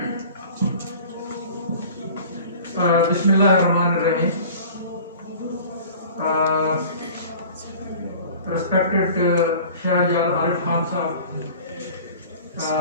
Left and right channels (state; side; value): inverted; both; correlation -0.43